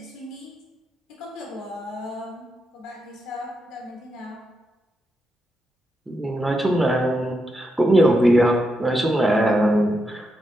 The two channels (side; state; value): both; normal; correlation 0.85